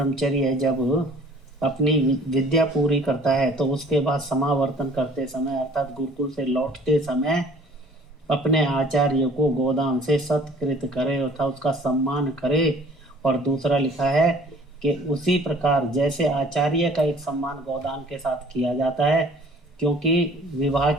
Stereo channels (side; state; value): both; normal; correlation 0.52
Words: जब अपनी विद्या पूरी करता है तो उसके बाद समावर्तन करते समय अर्थात गुरुकुल से लौटते समय अपने आचार्य को गोदान से सत्कृत करे अर्थात उसका सम्मान करे। और दूसरा लिखा है कि उसी प्रकार जैसे आचार्य का एक सम्मान गोदान के साथ किया जाता है, क्योंकि विवाह